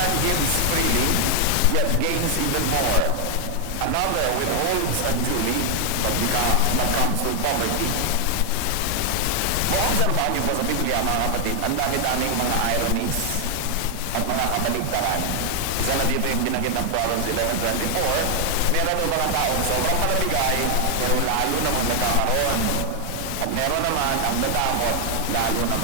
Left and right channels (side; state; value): both; different; correlation 0.00